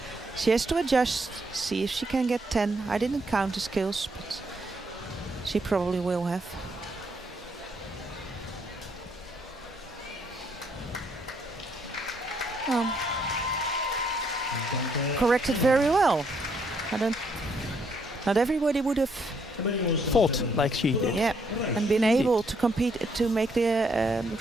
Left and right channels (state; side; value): normal; both; correlation 0.71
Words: has to adjust, see if she can get 10. I didn't count the skills, but she probably will have. Corrected very well. Not everybody would have Fought like she did. yeah, and been able to compete to make the